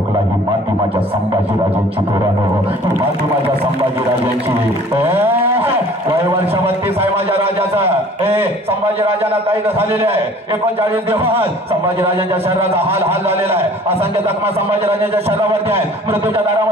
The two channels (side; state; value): both; normal; correlation 0.50